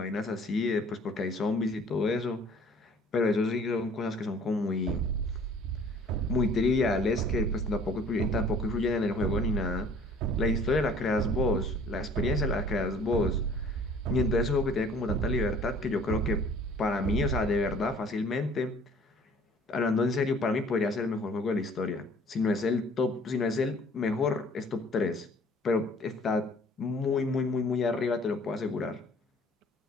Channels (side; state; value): both; normal; correlation 0.53